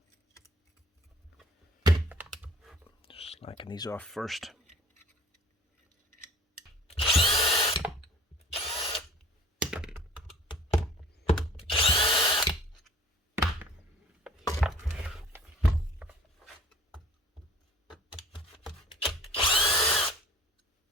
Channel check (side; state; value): both; normal; correlation 0.49